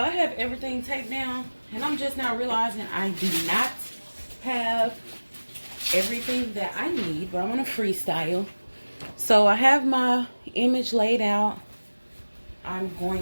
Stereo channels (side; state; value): both; inverted; correlation -1.00